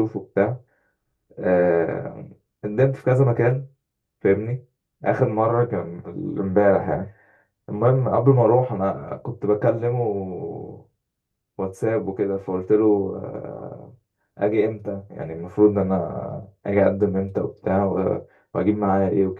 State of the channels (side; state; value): both; identical; correlation 1.00